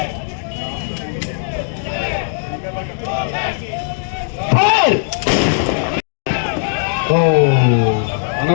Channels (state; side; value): silent; right; digital silence